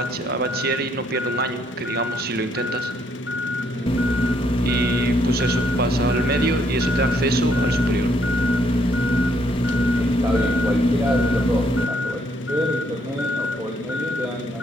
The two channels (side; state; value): both; normal; correlation 0.70